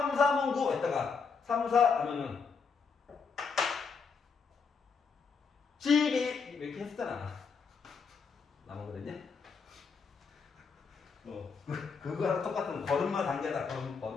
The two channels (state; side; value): quieter; right; 5.4 dB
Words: 3은 9 했다가 3, 4 하면은 12 이렇게 했잖아. 남았거든요. 그거랑 똑같은 걸음마 단계다.